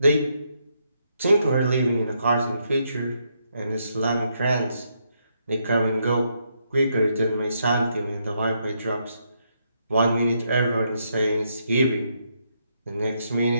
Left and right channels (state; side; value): inverted; both; correlation -0.77